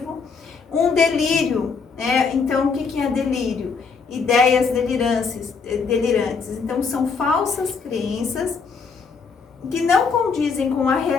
Um delírio, né? Então o que é delírio? Ideias delirantes, então são falsas crenças que não condizem com a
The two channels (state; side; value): quieter; right; 5.2 dB